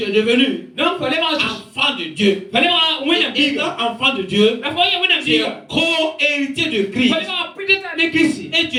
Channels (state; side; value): identical; both; correlation 1.00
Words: es devenu enfant de Dieu. Et étant enfant de Dieu, tu es co-héritier de Christ. Et tu